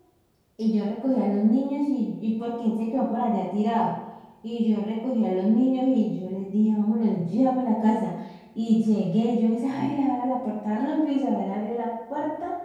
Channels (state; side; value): identical; both; correlation 1.00